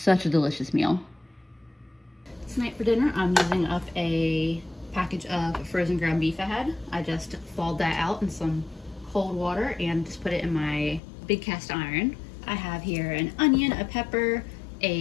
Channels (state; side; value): drops out; right; at 11.0 s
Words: a delicious meal. Tonight for dinner, I'm using up a package of frozen ground beef I had. I just thawed that out in some cold water and just put it in my big cast iron. I have here an onion, a pepper,